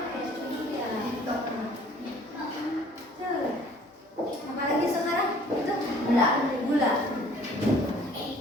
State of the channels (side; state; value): both; normal; correlation 0.54